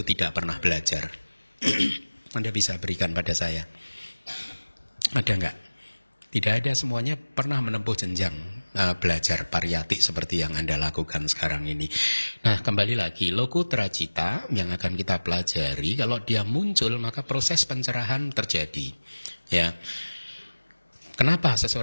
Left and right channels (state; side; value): inverted; both; correlation -1.00